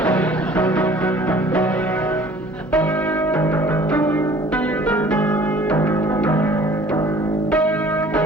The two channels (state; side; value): normal; both; correlation 0.51